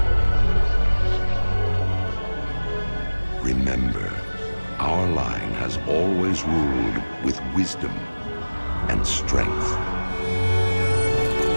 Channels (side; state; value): both; inverted; correlation -1.00